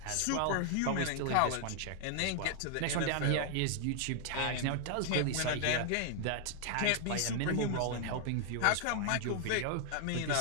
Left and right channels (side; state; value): both; different; correlation 0.00